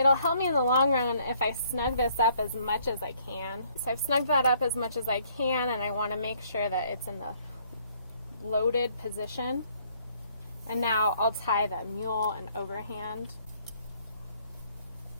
help me in the long run if I snug this up as much as I can. So I've snugged that up as much as I can, and I want to make sure that it's in the loaded position. And now I'll tie the mule and overhand.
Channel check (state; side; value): inverted; both; correlation -0.64